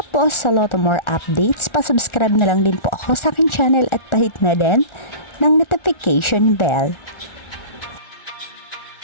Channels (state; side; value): late; right; 1.4 ms